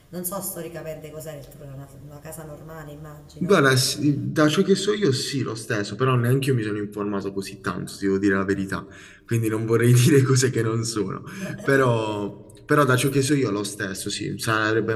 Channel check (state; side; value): identical; both; correlation 1.00